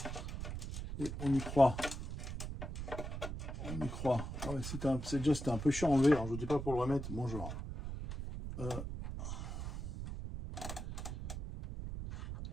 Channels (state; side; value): noise; right; rumble, 6 dB below the sound